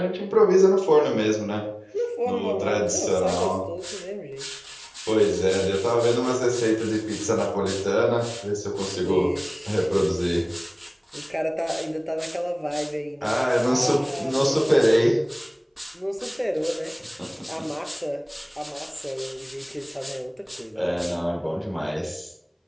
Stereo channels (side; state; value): both; identical; correlation 1.00